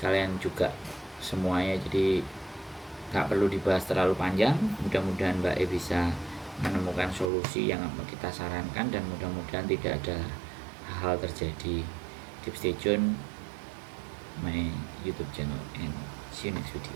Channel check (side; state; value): left; drops out; at 7.3 s